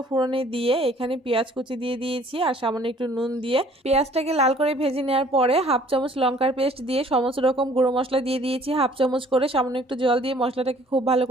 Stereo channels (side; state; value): both; normal; correlation 0.56